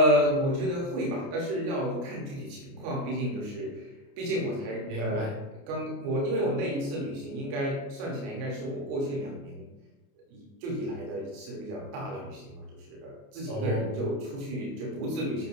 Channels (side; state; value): left; late; 29 ms